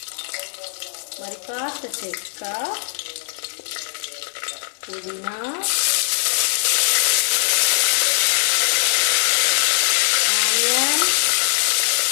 మరి కాస్త చెక్క, పుదీనా, ఆనియన్,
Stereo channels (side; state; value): right; silent; digital silence